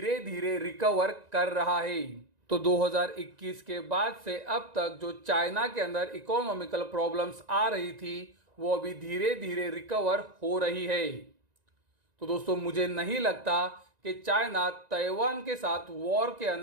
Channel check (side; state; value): left; late; 1.9 ms